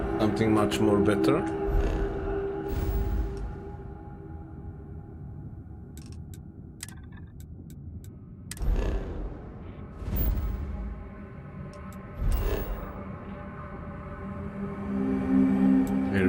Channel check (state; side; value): identical; both; correlation 1.00